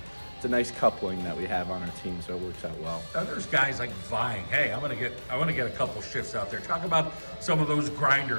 nice coupling that we have on our team, so it works out well. Now there's guys like vying. Hey, I want to get a couple shifts out there. Talk about some of those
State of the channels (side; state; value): both; inverted; correlation -1.00